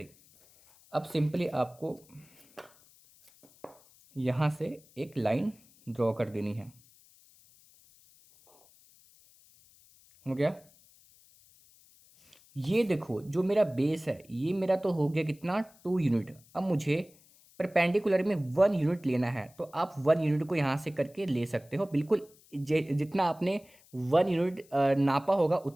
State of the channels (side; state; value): left; noise; hiss, 28 dB below the sound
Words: अब सिंपली आपको यहाँ से एक लाइन ड्रॉ कर देनी है। हो गया, ये देखो जो मेरा बेस है ये मेरा तो हो गया कितना, 2 यूनिट। अब मुझे परपेंडिकुलर में 1 यूनिट लेना है, तो आप 1 यूनिट को यहाँ से करके ले सकते हो, बिल्कुल जितना आपने 1 यूनिट नापा होगा